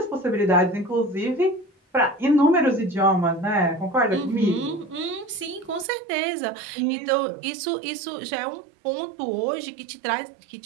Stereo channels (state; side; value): drops out; left; at 5.9 s